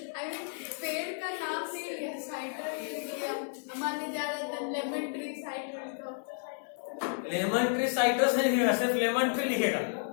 पेड़ का नाम नहीं लिया, साइट्रस हमारे ज्यादातर lemon tree citrus, lemon tree citrus नहीं लिखेगा, सिर्फ लेमन ट्री लिखेगा।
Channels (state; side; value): silent; right; digital silence